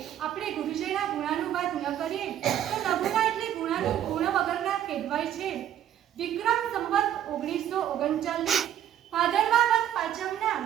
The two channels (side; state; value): left; quieter; 10.8 dB